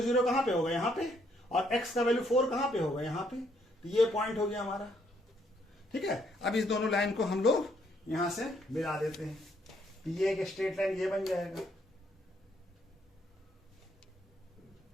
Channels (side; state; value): both; normal; correlation 0.71